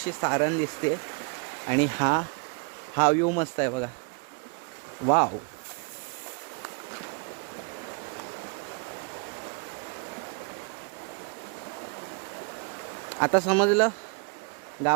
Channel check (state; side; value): quieter; left; 35.5 dB